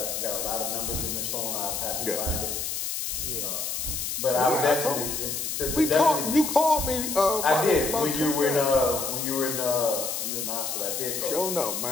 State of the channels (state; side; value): noise; left; hiss, 3 dB below the sound